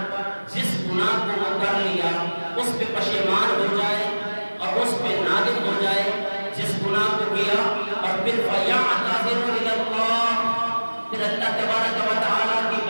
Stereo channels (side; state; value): both; inverted; correlation -1.00